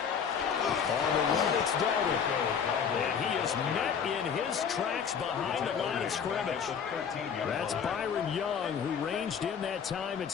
On the run, it's Dalvin. And he is met in his tracks behind the line of scrimmage. That's Byron Young, who ranged in that time and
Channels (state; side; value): quieter; right; 7.1 dB